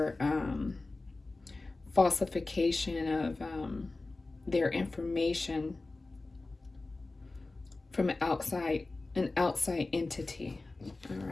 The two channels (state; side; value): quieter; right; 3.3 dB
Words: falsification of their information from an outside entity. All